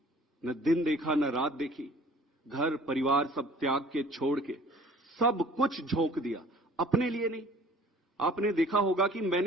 न दिन देखा, न रात देखी। घर परिवार सब त्याग के, छोड़ के, सब कुछ झोंक दिया। अपने लिए नहीं। आपने देखा होगा कि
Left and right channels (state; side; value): normal; both; correlation 0.50